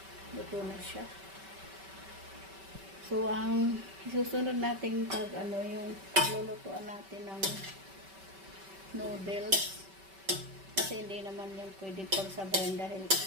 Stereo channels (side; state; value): left; late; 5.2 ms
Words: Luto na siya. So, ang susunod natin pag yung lulutuan natin ng noodles. Kasi hindi naman yung pwede pagsabayan dahil